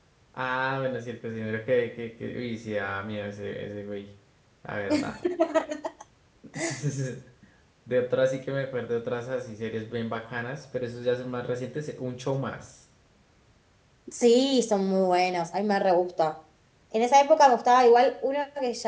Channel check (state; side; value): identical; both; correlation 1.00